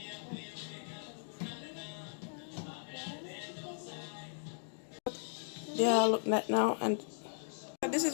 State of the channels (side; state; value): right; silent; digital silence